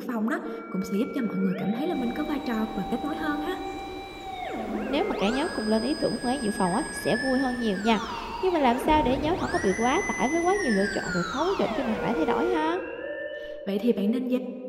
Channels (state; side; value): identical; both; correlation 1.00